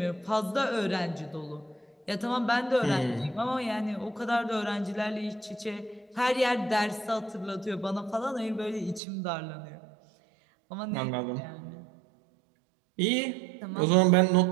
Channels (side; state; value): left; drops out; at 9.0 s